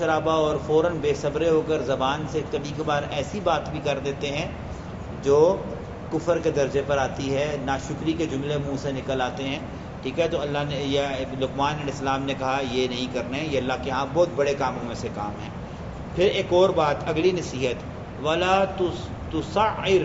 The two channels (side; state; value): both; identical; correlation 1.00